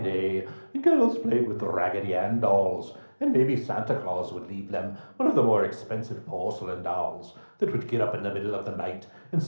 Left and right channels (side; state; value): both; inverted; correlation -1.00